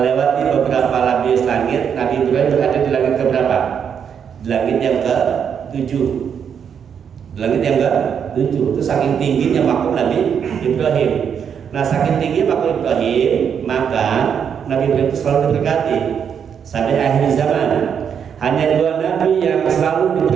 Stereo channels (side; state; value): left; quieter; 7.6 dB